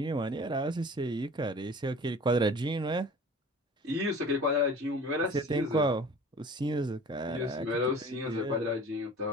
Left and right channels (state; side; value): normal; both; correlation 0.44